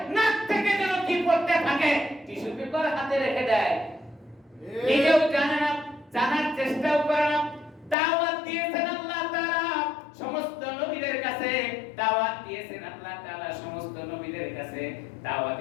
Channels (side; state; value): right; drops out; at 8.0 s